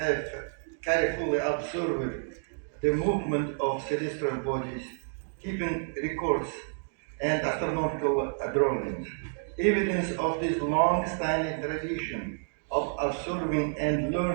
have carefully observed the movement of celestial bodies, keeping records and astronomical drawings. Evidence of this long-standing tradition of observing and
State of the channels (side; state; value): left; silent; 58 dB below the other